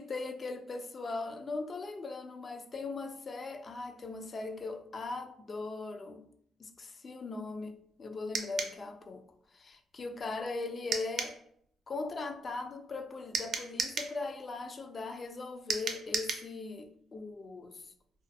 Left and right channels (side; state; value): both; normal; correlation 0.76